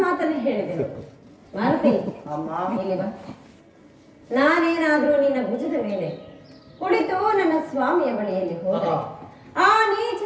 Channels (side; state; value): both; identical; correlation 1.00